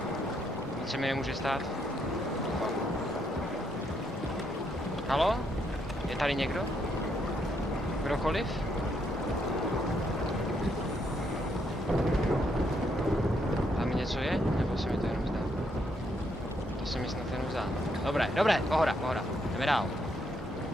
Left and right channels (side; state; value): both; normal; correlation 0.75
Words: Nic se mi nemůže stát. Halo? Je tady někdo? Kdokoliv? Tam něco je? Nebo se mi to jenom zdá? To se mi snad jenom zdá. Dobré, pohoda. Jdeme dál.